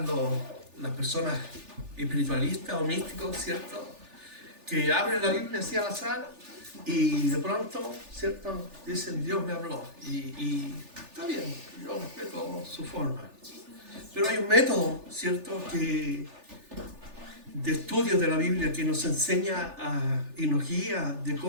las personas espiritualistas o místicos, ¿cierto? Que abren la Biblia así al azar y de pronto, ¿cierto? Dicen, Dios me habló. Y está bien, yo respeto su forma. Pero hay un método, ¿cierto?, de estudio de la Biblia que nos enseña y nos guía de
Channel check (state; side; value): late; left; 3.4 ms